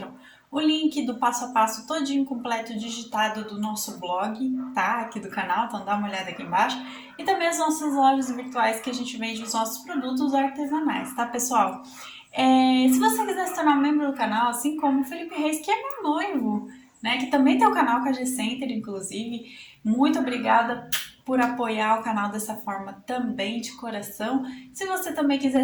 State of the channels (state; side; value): identical; both; correlation 1.00